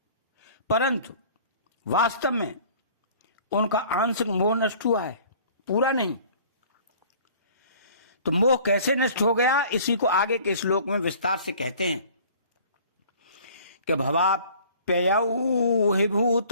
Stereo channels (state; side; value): inverted; both; correlation -0.50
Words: परंतु वास्तव में उनका आंशिक मोह नष्ट हुआ है, पूरा नहीं। तो मोह कैसे नष्ट हो गया, इसी को आगे के श्लोक में विस्तार से कहते हैं कि भवाप्ययौ हि